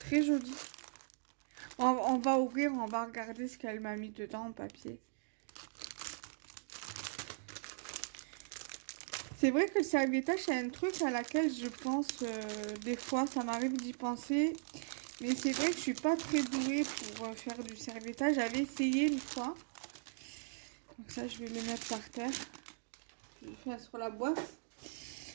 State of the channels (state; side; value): silent; left; digital silence